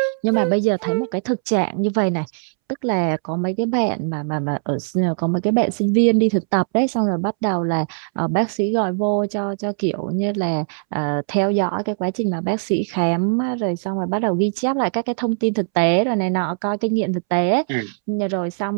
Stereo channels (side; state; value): left; silent; 65 dB below the other